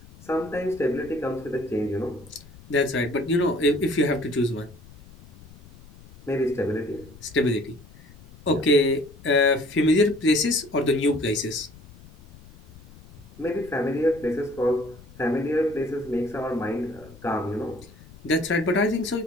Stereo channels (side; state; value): left; noise; rumble, 21 dB below the sound